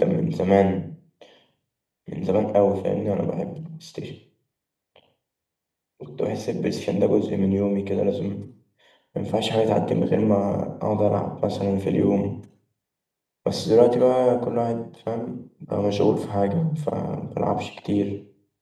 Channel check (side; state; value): both; identical; correlation 1.00